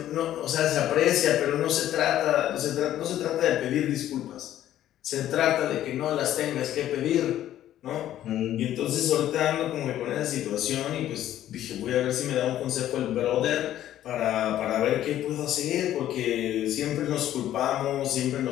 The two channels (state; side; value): quieter; right; 12.4 dB